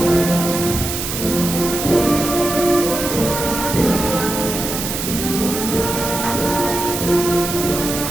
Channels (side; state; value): right; noise; hiss, 4 dB below the sound